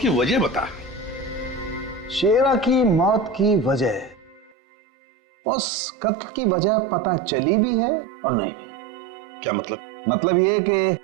वजह बता। शेरा की मौत की वजह, उस कत्ल की वजह पता चली भी है और नहीं भी। क्या मतलब? मतलब ये कि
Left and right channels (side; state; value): left; drops out; at 4.5 s